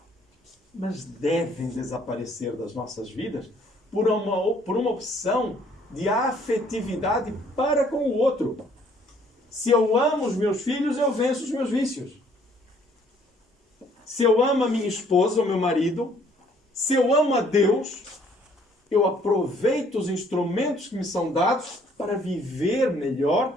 mas devem desaparecer das nossas vidas por uma opção de afetividade para com o outro. Se eu amo os meus filhos, eu venço os meus vícios. Se eu amo a minha esposa ou meu marido, se eu amo a Deus, eu aproveito os instrumentos que me são dados para viver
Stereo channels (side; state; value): both; normal; correlation 0.62